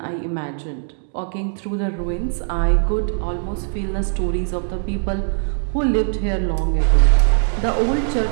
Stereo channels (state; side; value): silent; left; digital silence